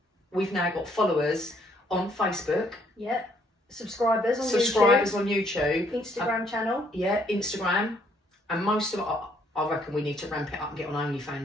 we've now got followers on Facebook. Yeah. Subscribers on YouTube. Instagram channel. Yeah, Instagram. And most of it, I reckon we need to ramp it up and get on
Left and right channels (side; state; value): both; normal; correlation 0.67